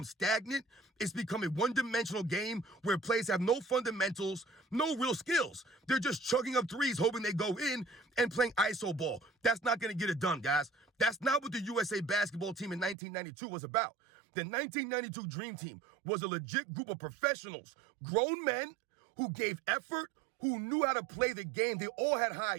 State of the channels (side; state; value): left; drops out; at 13.0 s